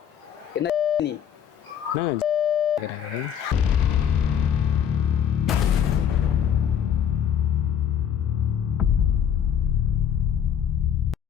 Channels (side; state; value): right; quieter; 8.7 dB